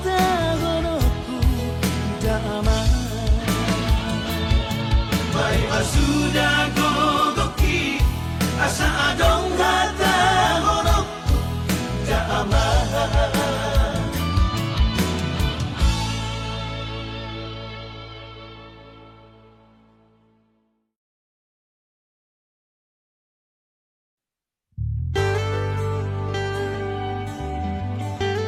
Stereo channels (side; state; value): both; identical; correlation 1.00